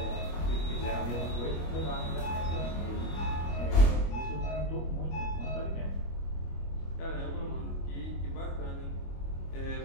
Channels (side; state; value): right; late; 25 ms